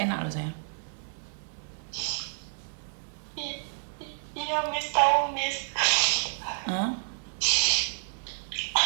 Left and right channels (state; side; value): silent; left; 58 dB below the other